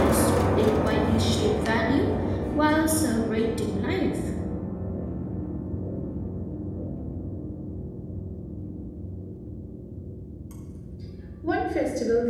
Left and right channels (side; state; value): both; identical; correlation 1.00